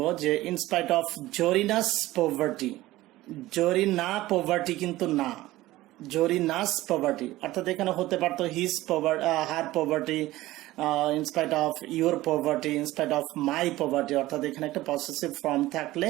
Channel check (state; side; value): quieter; left; 17.1 dB